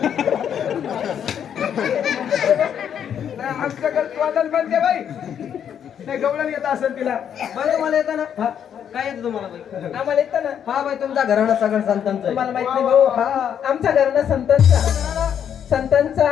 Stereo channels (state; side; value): quieter; right; 8.7 dB